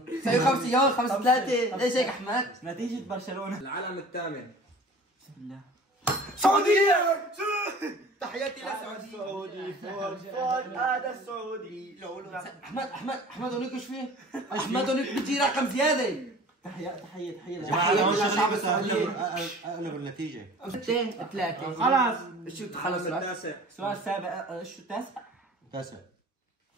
سوي 5 يوم 5-3. ليش هيك احمد؟ نتيجة برشلونة. العلم الثامن. بسم الله. سعودية. تحياتي للسعودية. سعودي فوق هذا السعودي. احمد هونيك ايش فيه؟ احمد هونيك بيجي رقم زيادة. تحية اقلب النتيجة. 2-3 خلاص. شو خلص السؤال السابع. شو التاسع؟ 9.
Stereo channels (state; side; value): normal; both; correlation 0.44